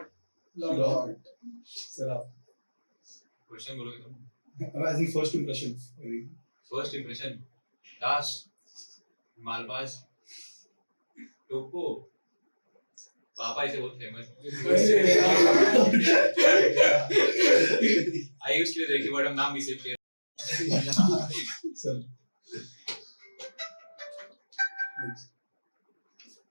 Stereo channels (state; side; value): inverted; both; correlation -1.00